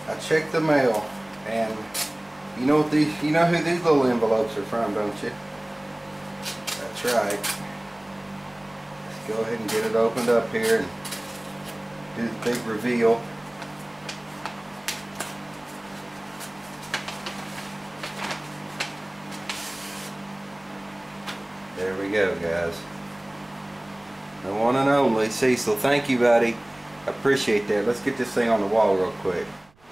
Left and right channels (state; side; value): noise; right; rumble, 30 dB below the sound